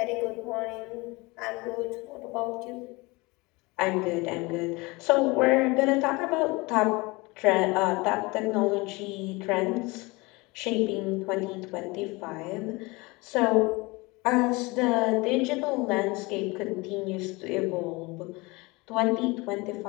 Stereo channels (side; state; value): right; quieter; 24.5 dB